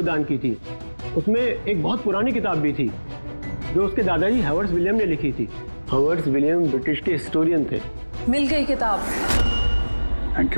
दान की थी। उसमें एक बहुत पुरानी किताब भी थी जो उसके दादाजी हावर्ड विलियम ने लिखी थी। हावर्ड विलियम ब्रिटिश के हिस्टोरियन थे। मिल गई किताब। Thank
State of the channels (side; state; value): both; inverted; correlation -1.00